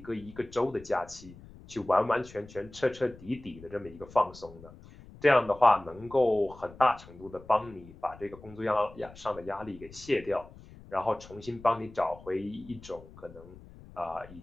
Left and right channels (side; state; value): left; noise; rumble, 19 dB below the sound